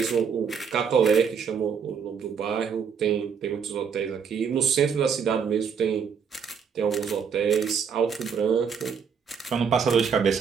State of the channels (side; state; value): left; quieter; 6.7 dB